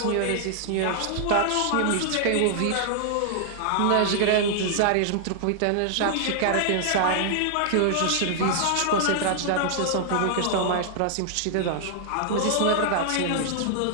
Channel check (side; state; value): both; different; correlation -0.01